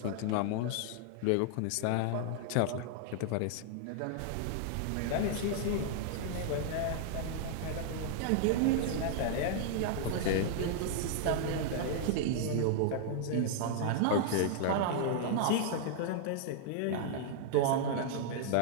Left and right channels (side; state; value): both; different; correlation -0.01